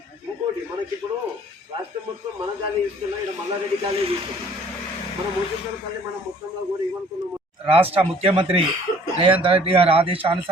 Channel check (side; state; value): both; normal; correlation 0.55